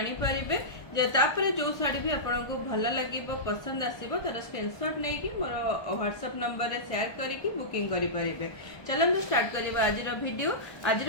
परिबे। तापर जो शाढ़ी भी आपको भल लगे पसंद आसो तार स्क्रीनशॉट नहीं कि मोर व्हाट्सएप नंबर रे शेयर करके बुकिंग करि परिबे। चलନ୍ତୁ स्टार्ट करिबा आज वीडियो। आज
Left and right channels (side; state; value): right; late; 1.2 ms